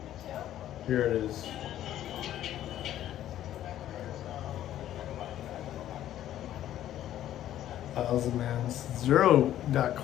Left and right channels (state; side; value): quieter; right; 12.3 dB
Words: here it is. Thousand mans, 0 dot